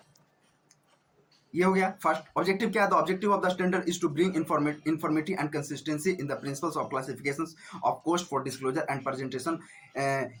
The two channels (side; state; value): both; identical; correlation 1.00